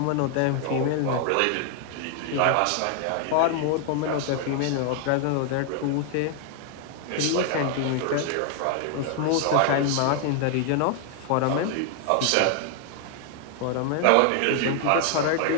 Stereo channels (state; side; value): different; both; correlation 0.00